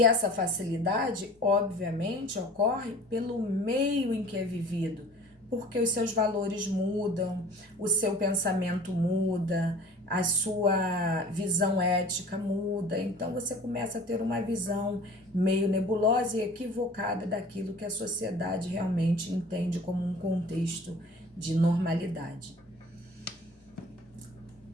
essa facilidade, obviamente, ocorre pelo meio em que é vivido, porque os seus valores mudam, o seu pensamento muda, a sua visão ética muda, então você começa a ter uma visão meio nebulosa e equivocada daquilo que a sociedade realmente entende como um contexto de normalidade.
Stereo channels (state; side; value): normal; both; correlation 0.45